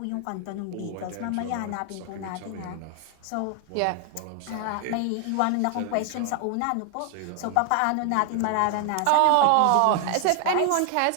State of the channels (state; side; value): different; both; correlation 0.00